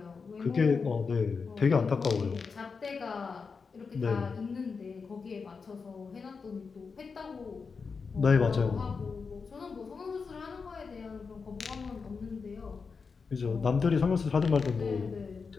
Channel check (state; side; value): quieter; right; 5.1 dB